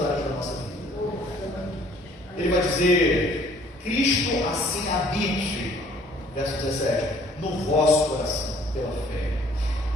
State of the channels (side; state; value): both; normal; correlation 0.58